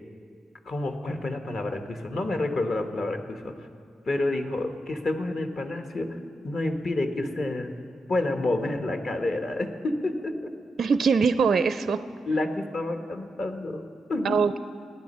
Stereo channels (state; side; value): normal; both; correlation 0.86